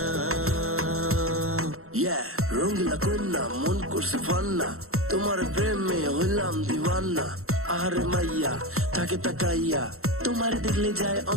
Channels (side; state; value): left; late; 0.63 ms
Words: রঙ্গিলা কন্যা মন করছে ফান্না, তোমার প্রেমে হইলাম দিওয়ানা। আহারে মাইয়া থাকে তাকাইয়া, তোমার দেখলে যায়